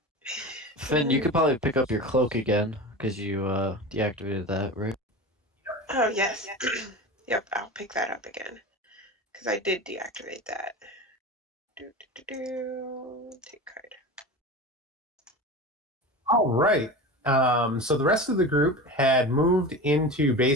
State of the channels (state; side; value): normal; both; correlation 0.30